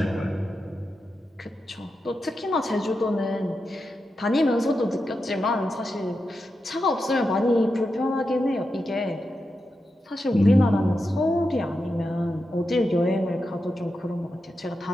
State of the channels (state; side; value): normal; both; correlation 0.88